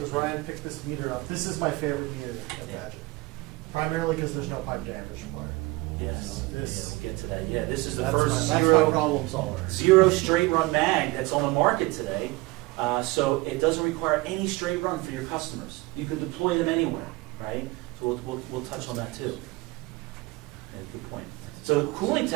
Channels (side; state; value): left; quieter; 22.0 dB